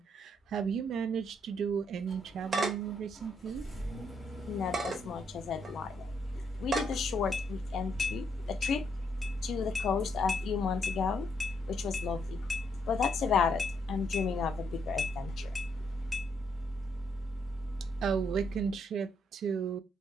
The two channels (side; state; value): both; normal; correlation 0.74